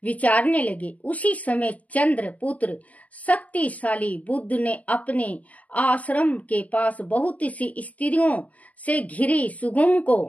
विचारने लगे। उसी समय चंद्रपुत्र शक्तिशाली बुद्ध ने अपने आश्रम के पास बहुत सी स्त्रियों से घिरी सुगुम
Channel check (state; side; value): late; right; 0.070 ms